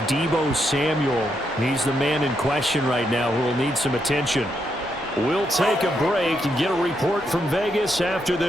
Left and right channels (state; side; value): normal; both; correlation 0.80